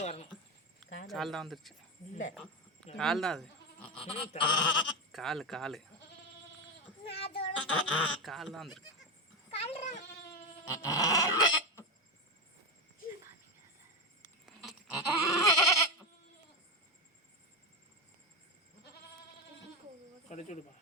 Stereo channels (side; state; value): both; normal; correlation 0.14